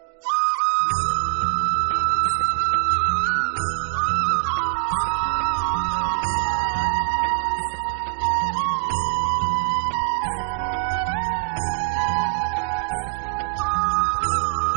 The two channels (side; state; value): left; silent; digital silence